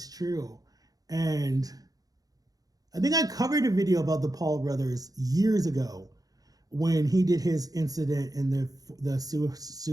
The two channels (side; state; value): left; late; 0.18 ms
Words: true. And I think I covered a video about the Paul brothers years ago when he did his incident in the